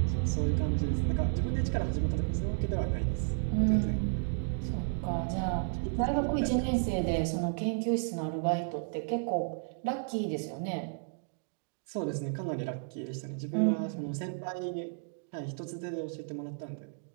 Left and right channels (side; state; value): left; silent; digital silence